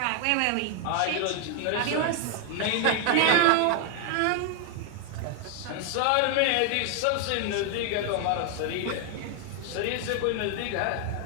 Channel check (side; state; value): both; different; correlation 0.00